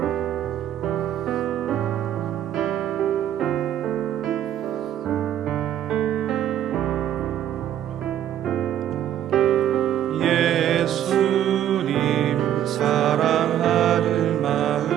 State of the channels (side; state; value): left; quieter; 11.0 dB